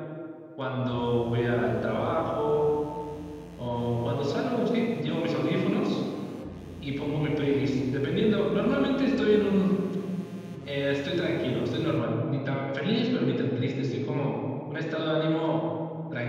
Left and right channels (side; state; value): both; identical; correlation 1.00